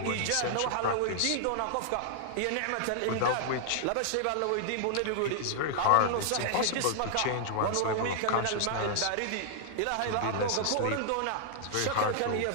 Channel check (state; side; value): different; both; correlation -0.01